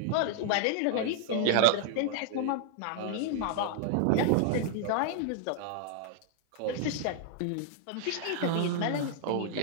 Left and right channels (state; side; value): different; both; correlation 0.00